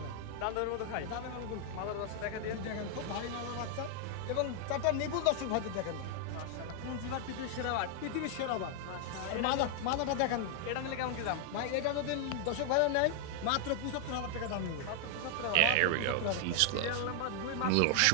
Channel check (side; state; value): both; different; correlation 0.00